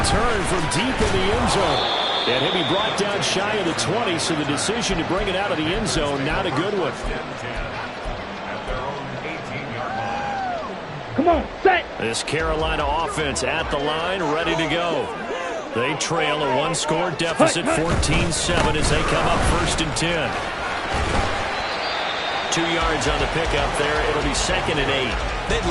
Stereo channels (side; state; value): both; identical; correlation 1.00